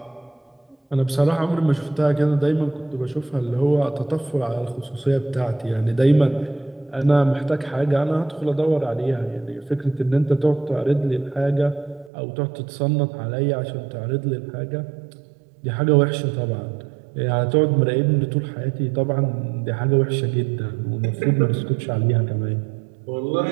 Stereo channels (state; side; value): drops out; left; at 12.1 s